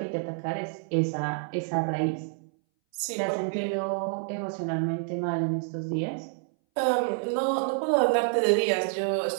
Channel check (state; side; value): silent; left; 59 dB below the other